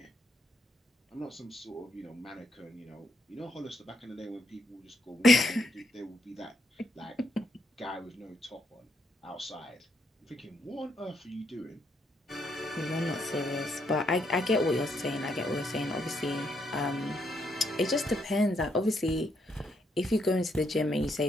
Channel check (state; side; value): normal; both; correlation 0.75